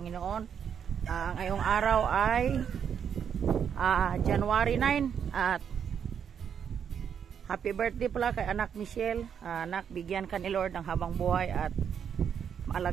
Ngayong araw ay January 9 at happy birthday pala kay anak Michelle. Anak, bigyan ka ni Lord ng habang buhay at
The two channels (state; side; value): quieter; left; 7.9 dB